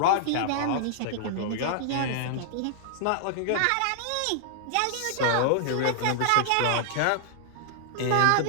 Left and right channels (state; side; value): different; both; correlation -0.01